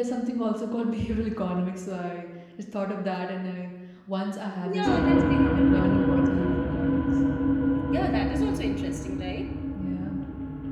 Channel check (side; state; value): both; identical; correlation 1.00